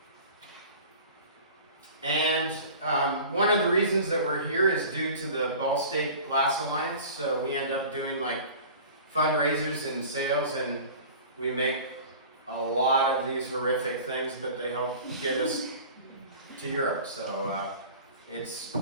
And one of the reasons that we're here is due to the Ball State Glass Alliance. So we end up doing like fundraisers and sales, and we make a lot of these horrific things, but they help get us to Europe. So it's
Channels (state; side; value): inverted; both; correlation -0.41